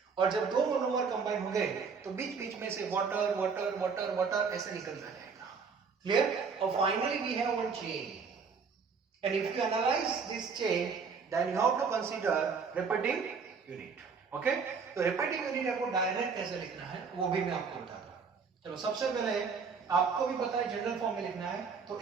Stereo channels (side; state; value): left; quieter; 5.5 dB